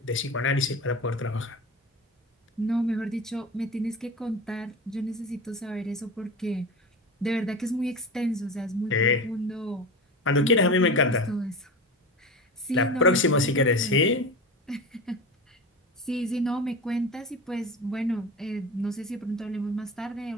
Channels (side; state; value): both; normal; correlation 0.28